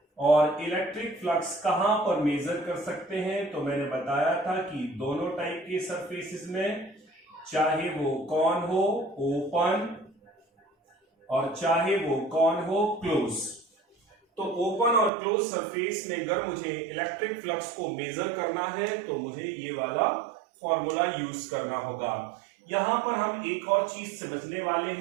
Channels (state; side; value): drops out; left; at 15.1 s